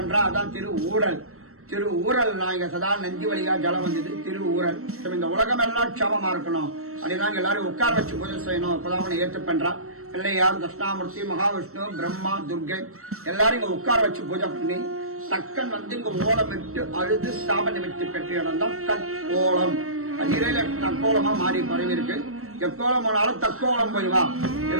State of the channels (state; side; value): late; left; 0.63 ms